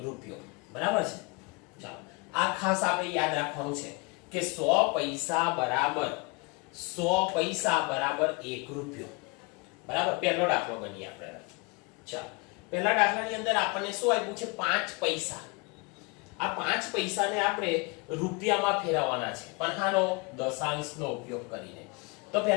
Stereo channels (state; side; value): quieter; right; 29.2 dB